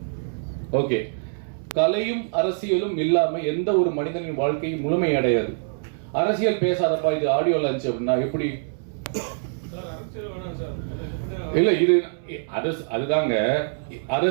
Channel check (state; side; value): silent; left; 62 dB below the other